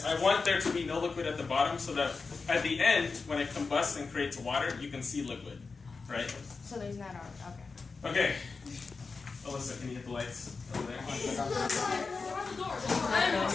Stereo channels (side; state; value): right; quieter; 4.4 dB